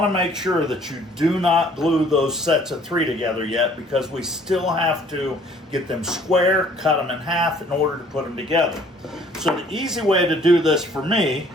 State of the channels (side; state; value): both; normal; correlation 0.57